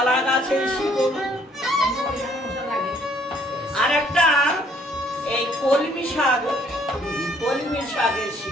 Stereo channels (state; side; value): normal; both; correlation 0.63